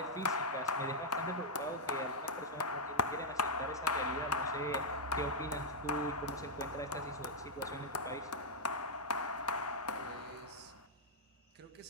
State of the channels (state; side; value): normal; both; correlation -0.03